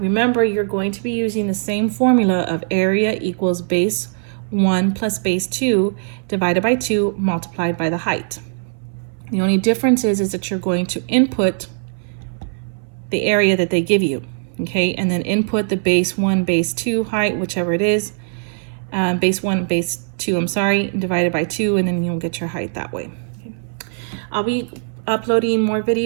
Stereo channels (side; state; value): left; silent; 62 dB below the other